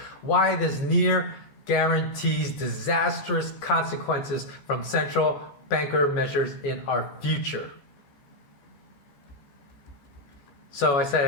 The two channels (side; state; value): right; late; 14 ms